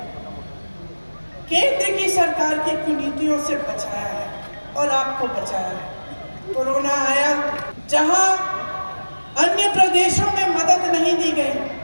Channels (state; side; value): inverted; both; correlation -1.00